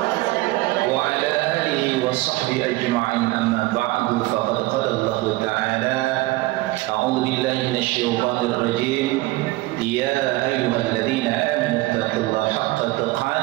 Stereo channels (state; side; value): quieter; left; 19.7 dB